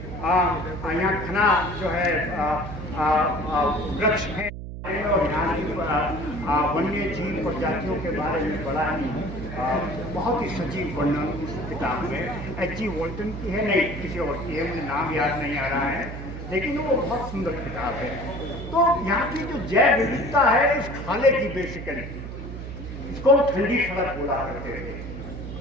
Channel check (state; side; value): noise; right; hum, 9 dB below the sound